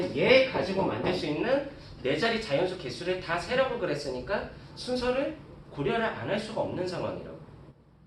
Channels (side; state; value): both; identical; correlation 1.00